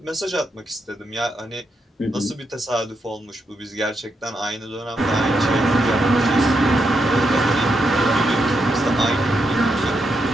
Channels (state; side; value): normal; both; correlation 0.82